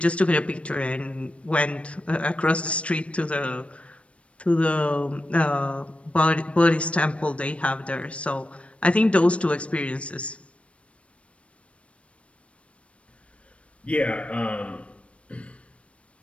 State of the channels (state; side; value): late; right; 0.062 ms